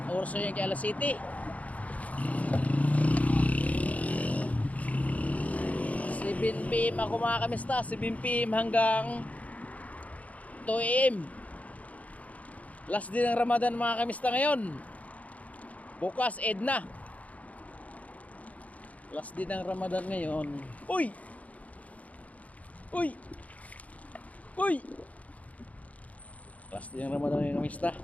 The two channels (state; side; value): late; right; 0.069 ms